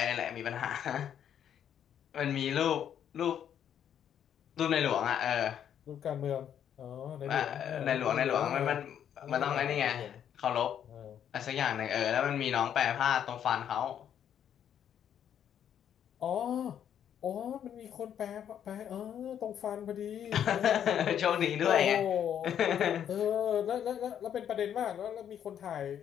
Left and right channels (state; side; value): quieter; right; 9.3 dB